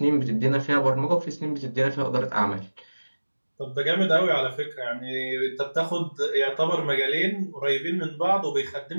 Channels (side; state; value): both; inverted; correlation -1.00